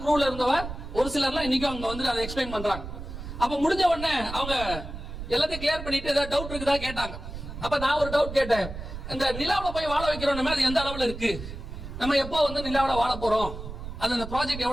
க்ரூல இருந்தவ ஒரு சிலர்லாம் இன்னைக்கும் அங்க வந்து அதை எக்ஸ்பிளைன் பண்றாங்க. அப்ப முடிஞ்ச உடனே அவங்க எல்லாத்தையும் கிளியர் பண்ணிட்டு ஏதாவது டவுட் இருக்குதா கேட்டாங்க. அப்ப நான் ஒரு டவுட் கேட்டேன், இந்த நிலாவுல போய் வாழ வைக்கிறோம் அது எந்த அளவுல இருக்கு, நம்ம எப்போ வந்து நிலாவுல வாழ போறோம், அந்த ப்ராஜெக்ட்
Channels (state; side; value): noise; right; rumble, 9 dB below the sound